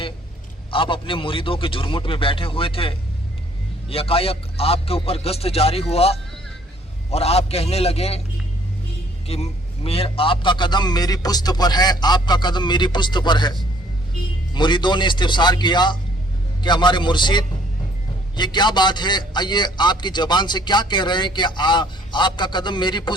आप अपने मुरीदों के झुरमुट में बैठे हुए थे। यकायक आपके ऊपर गश्त जारी हुआ और आप कहने लगे कि आपका कदम मेरी पुश्त पर है, आपका कदम मेरी पुश्त पर है। मुरीदों ने इस्तिफसार किया कि हमारे मुर्शिद ये क्या बात है, ये आपकी ज़बान से क्या कह रहे हैं कि आपका कदम मेरी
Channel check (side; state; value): both; normal; correlation 0.61